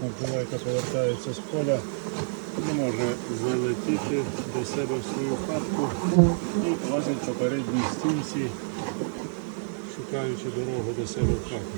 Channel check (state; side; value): silent; left; digital silence